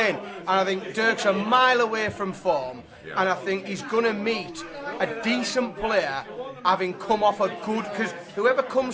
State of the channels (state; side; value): identical; both; correlation 1.00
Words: And I think Dirk's a mile away from form, and I think he's going to meet a decent player having come off a good, because whoever